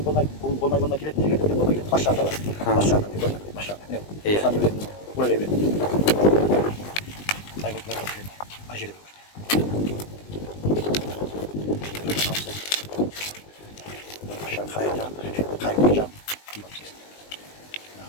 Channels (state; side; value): late; right; 20 ms